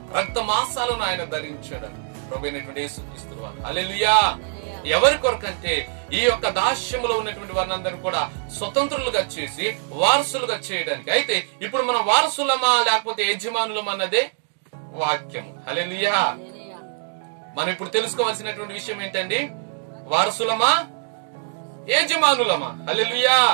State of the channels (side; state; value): left; silent; 63 dB below the other